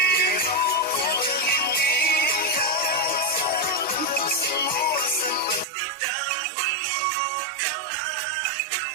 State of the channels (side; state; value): left; drops out; at 5.7 s